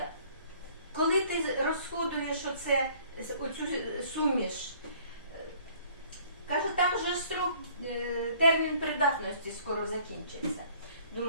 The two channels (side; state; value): both; inverted; correlation -0.56